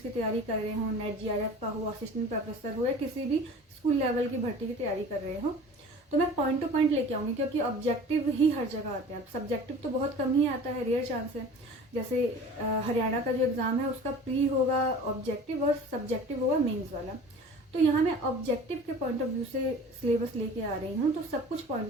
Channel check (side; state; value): both; normal; correlation 0.42